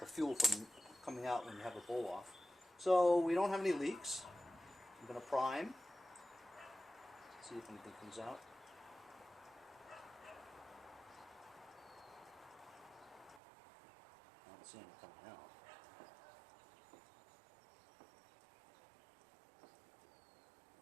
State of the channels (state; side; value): drops out; left; at 13.4 s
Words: the fuel from coming out when you have the bowl off. So we don't have any leaks. I'm going to prime, see if anything comes out. I don't see anything coming out.